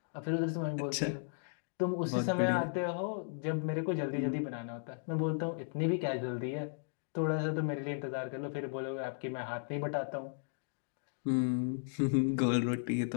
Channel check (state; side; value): silent; right; digital silence